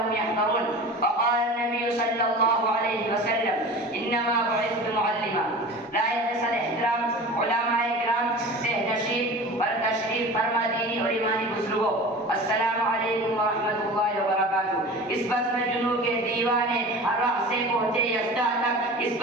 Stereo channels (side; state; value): both; normal; correlation 0.36